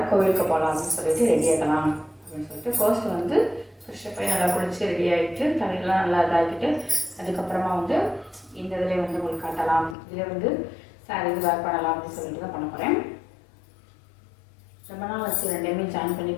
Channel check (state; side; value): drops out; right; at 10.0 s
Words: கோவிலுக்கு போகலாம் அப்படின்னு சொல்லிட்டு ரெடி ஆகலாம் அப்படின்னு சொல்லிட்டு ஃபர்ஸ்ட் வந்து ஃப்ரெஷ்ஷப் போய் நல்லா குளிச்சு ரெடி ஆகிட்டு தலையெல்லாம் நல்லா இதாகிட்டு அதுக்கப்புறமா வந்து இந்த இதில் வந்து உங்களுக்கு காட்டலாம், இதில் வந்து சாரி இது வேர் பண்ணலாம் அப்படின்னு சொல்லிட்டு தான் பண்ண போகிறேன். ரொம்ப நாள் வச்சு ரெண்டையுமே ஜாயின் பண்ணி